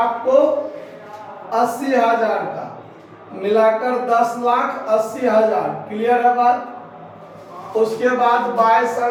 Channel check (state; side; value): identical; both; correlation 1.00